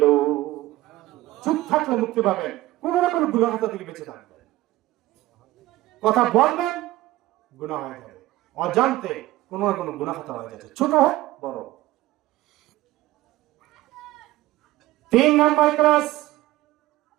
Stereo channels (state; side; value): quieter; left; 16.9 dB